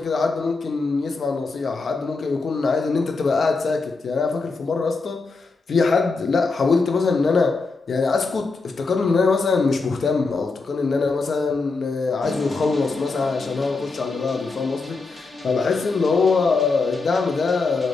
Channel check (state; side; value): quieter; right; 4.0 dB